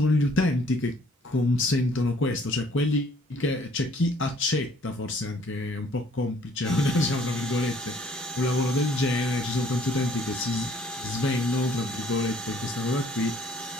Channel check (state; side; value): normal; both; correlation 0.60